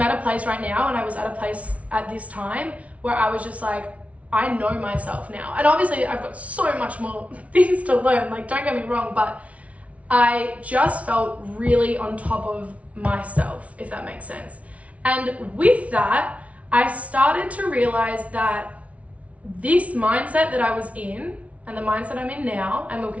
at a place right now, and I was at a place at this time where I was just like, I know myself now. And obviously I've got so much more things to learn, like don't get me wrong, but I just felt really on top of myself, if that makes sense. And with that, I started to realize that this mindset that I was in and the mindset I'm in now and will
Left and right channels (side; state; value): left; late; 0.065 ms